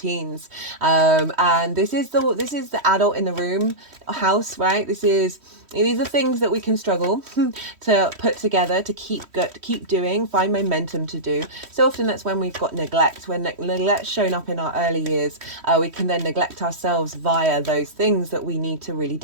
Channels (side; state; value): left; late; 3.1 ms